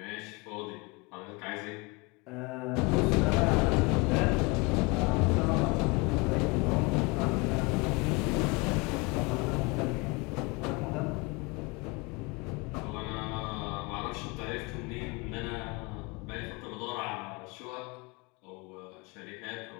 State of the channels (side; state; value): right; quieter; 27.1 dB